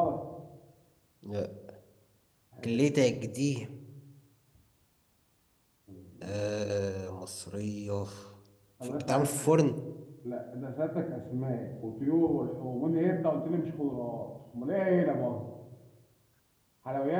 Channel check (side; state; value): both; identical; correlation 1.00